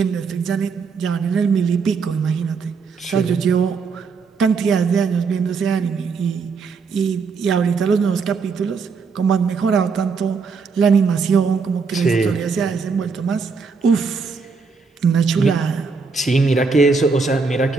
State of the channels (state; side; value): quieter; left; 5.0 dB